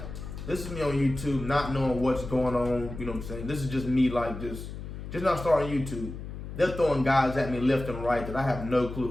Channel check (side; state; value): left; noise; hum, 9 dB below the sound